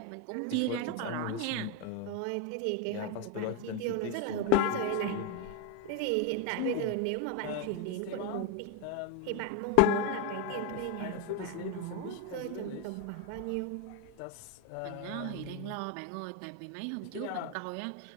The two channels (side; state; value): both; different; correlation 0.02